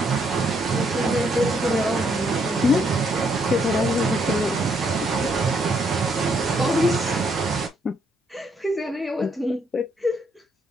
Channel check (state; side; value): normal; both; correlation 0.72